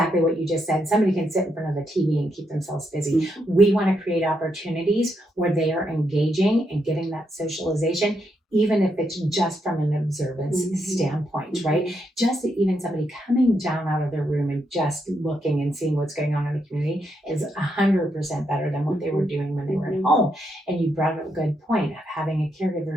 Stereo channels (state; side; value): normal; both; correlation 0.80